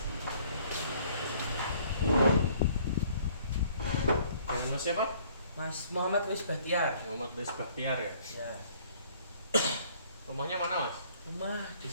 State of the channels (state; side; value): inverted; both; correlation -0.59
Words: Mas siapa? Mas Muhammad Luis Bahtiar. Muhammad Luis Bahtiar ya. Ya, Rumahnya mana mas? rumah